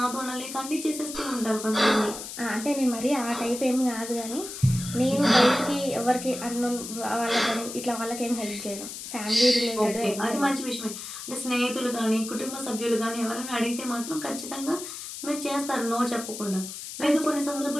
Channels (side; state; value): left; noise; hiss, 9 dB below the sound